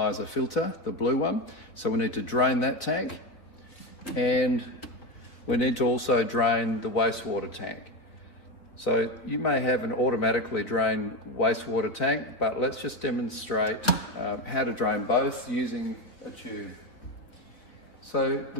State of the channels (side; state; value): right; late; 3.3 ms